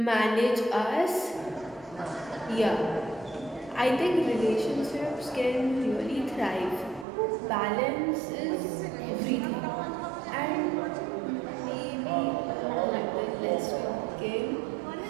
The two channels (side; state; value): left; drops out; at 7.1 s